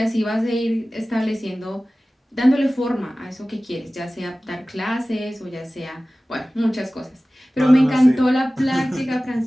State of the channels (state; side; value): normal; both; correlation 0.97